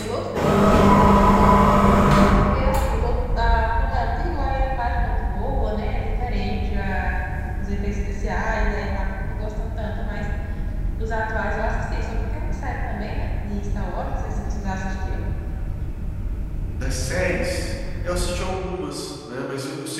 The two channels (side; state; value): both; identical; correlation 1.00